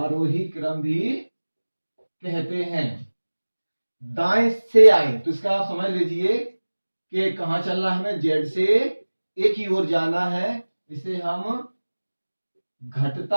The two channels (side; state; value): both; inverted; correlation -1.00